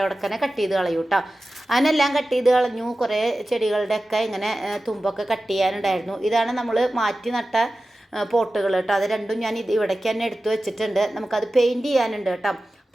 കട്ട് ചെയ്ത് കളയും കേട്ടോ. അതിനെല്ലാം കട്ട് ചെയ്ത് കളഞ്ഞു. കുറേ ചെടികളുടെയൊക്കെ ഇങ്ങനെ തുമ്പൊക്കെ കട്ട് ചെയ്യാനുണ്ടായിരുന്നു. ഇതാണ് നമ്മൾ മാറ്റി നട്ട പോട്ടുകൾ കേട്ടോ. അത് രണ്ടും ഞാൻ ഇവിടേക്ക് തന്നെ എടുത്തു വെച്ചിട്ടുണ്ട്. നമുക്കത് പെയിൻറ്റ് ചെയ്യാനുണ്ട് കേട്ടോ.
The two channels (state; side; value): normal; both; correlation 0.95